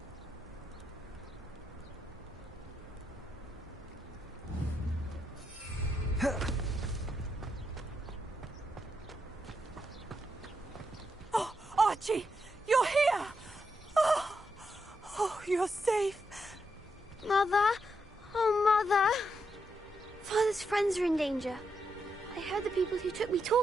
Oh, Archie, you're here! Oh, you're safe. Mother? Oh, Mother. Father's friends are in danger. I heard the people who took me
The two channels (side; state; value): both; normal; correlation 0.82